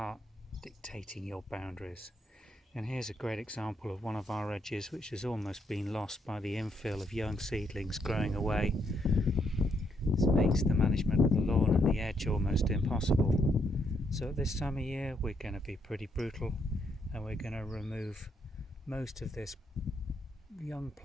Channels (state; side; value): normal; both; correlation 0.75